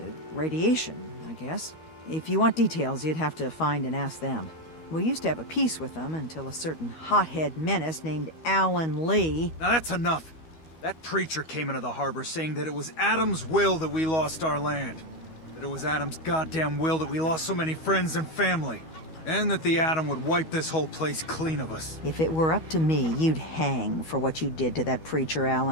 radiation, I guess. If you want details, you'd have to find and ask them. We used to have a peace with them until a certain hothead menace named Alan Lee... Now that's enough! That preacher came into the harbor saying that it was Adam's will that we lost our land. That it was Adam's goddamn will that we lost so many friends and family. And that the Atom would wipe this whole place clean of us. If it were up to me, you'd hang for what you did to that preacher,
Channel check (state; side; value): late; right; 12 ms